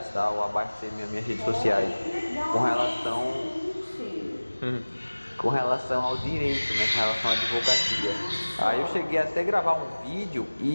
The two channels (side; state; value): both; inverted; correlation -1.00